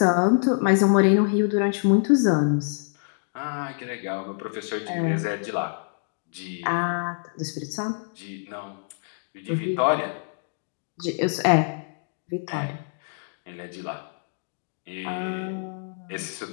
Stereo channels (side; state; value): right; silent; digital silence